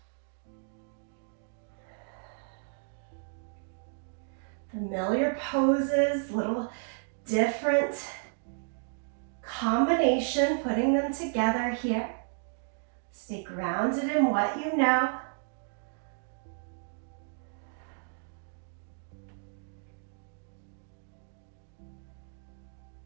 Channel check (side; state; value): left; silent; digital silence